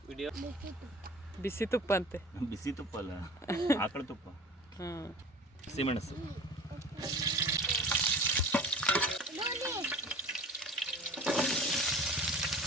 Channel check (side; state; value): both; normal; correlation 0.41